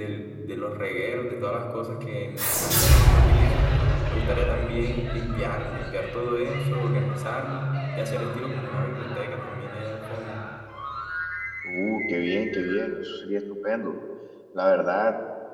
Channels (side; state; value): both; identical; correlation 1.00